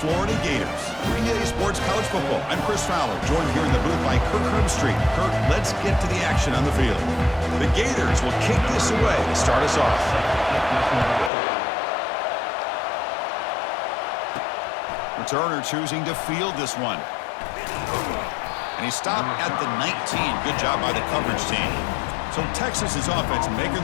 Florida Gators. 3A Sports College Football. I'm Chris Fowler, joined here in the booth by Kirk Herbstreit. Kirk, let's get to the action on the field. The Gators will kick this away to start us off. Returner choosing to field this one. And he stopped at the 19. Good job by the coverage team. So Texas's offense making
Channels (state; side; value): drops out; right; at 11.3 s